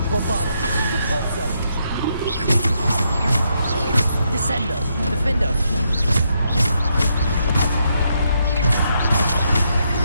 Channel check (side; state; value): both; inverted; correlation -0.78